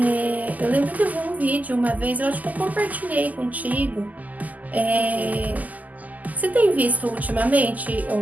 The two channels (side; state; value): left; late; 0.079 ms